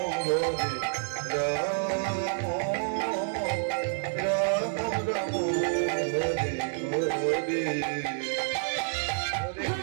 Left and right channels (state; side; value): silent; left; 59 dB below the other